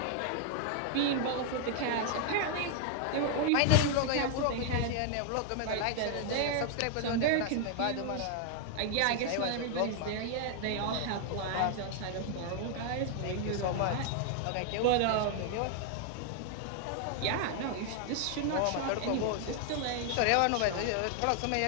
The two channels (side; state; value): both; different; correlation 0.00